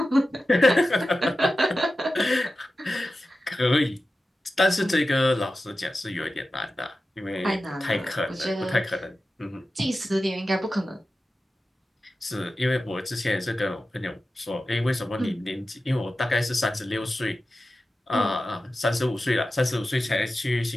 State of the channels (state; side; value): normal; both; correlation 0.93